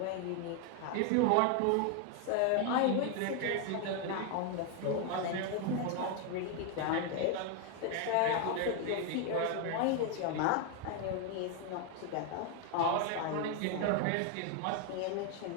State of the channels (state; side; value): different; both; correlation 0.01